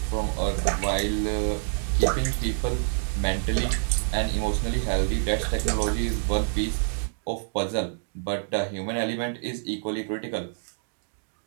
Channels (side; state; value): left; silent; digital silence